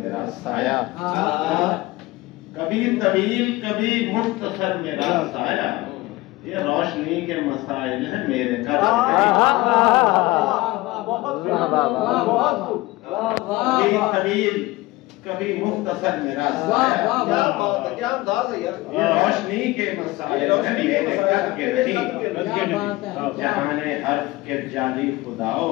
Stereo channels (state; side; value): quieter; right; 19.7 dB